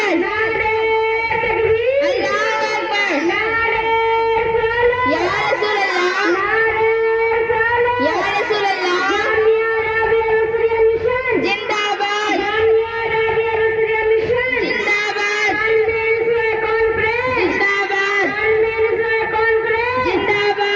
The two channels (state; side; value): identical; both; correlation 1.00